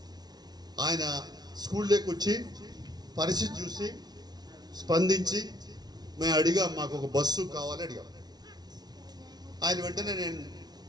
ఆయన స్కూల్లోకి వచ్చి పరిస్థితి చూసి స్పందించి మేము అడిగాం, మాకు ఒక బస్సు కావాలి అడిగాం. ఆయన వెంటనే నేను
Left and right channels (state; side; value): late; left; 0.19 ms